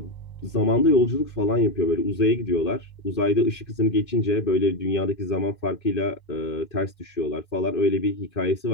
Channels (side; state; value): right; late; 2.1 ms